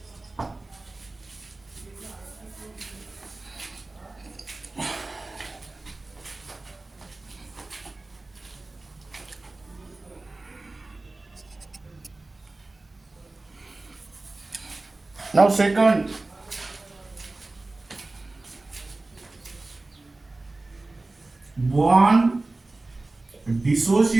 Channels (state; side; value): quieter; left; 3.1 dB